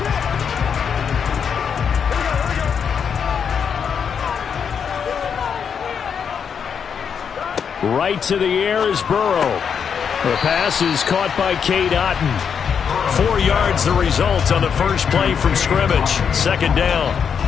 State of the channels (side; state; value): right; quieter; 7.0 dB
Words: Right to the air is Burrow. The pass is caught by Cade Otton. 4 yards the result on the first play from scrimmage. Second down.